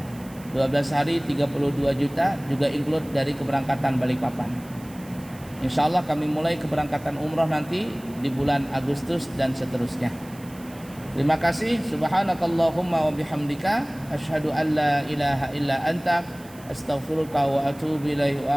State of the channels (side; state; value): right; noise; hiss, 22 dB below the sound